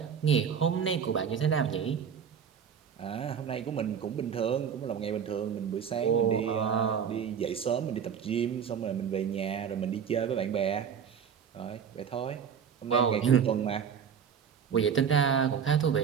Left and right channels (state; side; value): quieter; left; 7.5 dB